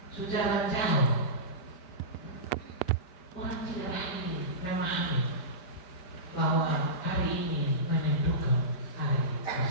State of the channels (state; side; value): late; right; 5.1 ms